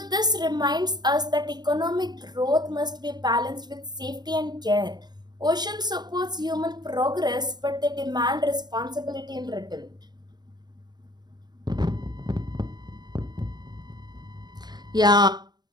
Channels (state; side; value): late; left; 0.20 ms